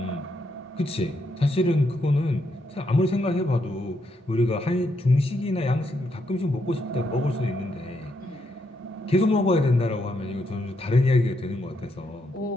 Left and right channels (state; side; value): normal; both; correlation 0.78